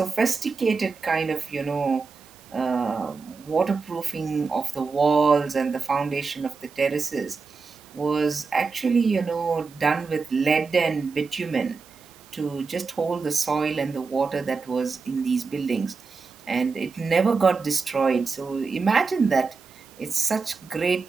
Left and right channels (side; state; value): left; quieter; 4.7 dB